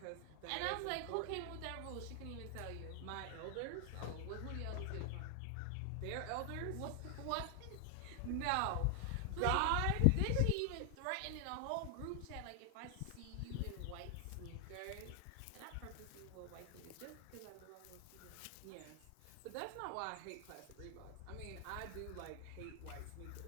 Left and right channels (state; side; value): different; both; correlation 0.00